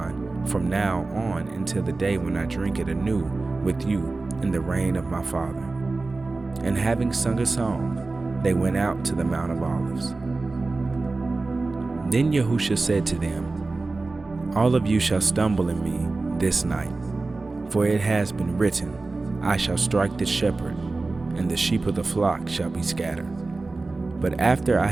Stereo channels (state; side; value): quieter; left; 3.5 dB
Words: from now on until the day when I drink it anew with you in the reign of my Father." And having sung a song, they went out to the Mount of Olives. Then YaHUsHa said to them, "All of you shall stumble in me this night, for it has been written, I shall strike the shepherd, and the sheep of the flock shall be scattered. But after I